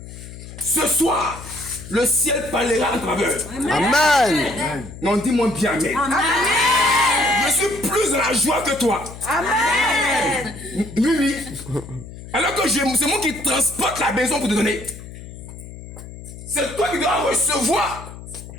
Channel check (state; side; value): noise; left; hum, 14 dB below the sound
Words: ce soir, le ciel parlera en travers. Amen. Non, dis-moi bien amen. Amen. la joie que toi. Amen. Oui, oui. Alors que c'est moi qui transporte la maison pour te donner. C'est toi qui dois recevoir.